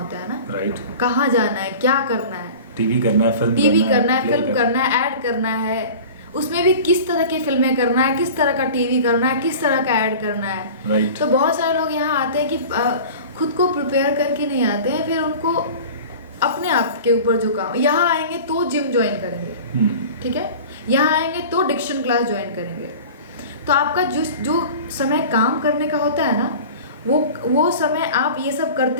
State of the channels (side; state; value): both; inverted; correlation -0.38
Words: है ना। राइट। कहाँ जाना है, क्या करना है, टीवी करना है, फिल्म टीवी करना है, play फिल्म करना है, ऐड करना है, उसमें भी किस तरह की फिल्में करना है, किस तरह का टीवी करना है, किस तरह का ऐड करना है। राइट। तो बहुत सारे लोग यहाँ आते हैं कि खुद को प्रिपेयर करके नहीं आते हैं, फिर उनको अपने आप के ऊपर जो काम, यहाँ आएंगे तो जिम ज्वाइन करेंगे, ठीक है, यहाँ आएंगे तो डिक्शन क्लास ज्वाइन करेंगे। तो आपका जो समय काम करने का होता है ना, वो समय आप ये सब